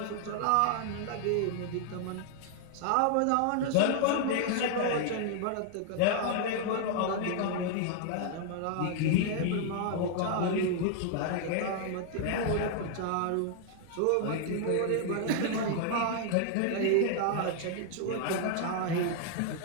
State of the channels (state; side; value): different; both; correlation 0.00